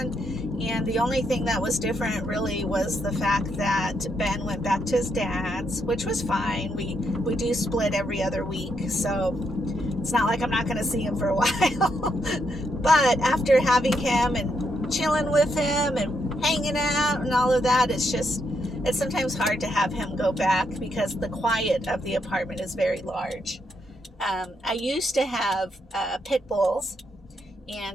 and the only thing that was different really was the fact that Ben went back to his dad's, which was fine. We do split every other week, so it's not like I'm not going to see him for a while. But after having him and chilling with him and hanging out and all of that, it's sometimes hard to have him go back because the quiet of the apartment is very large. I used to have pit bulls,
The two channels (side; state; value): both; normal; correlation 0.79